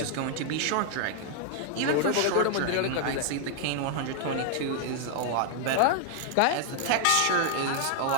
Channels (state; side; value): different; both; correlation 0.00